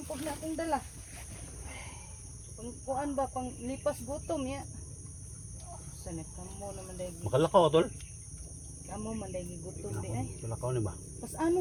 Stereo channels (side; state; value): both; identical; correlation 1.00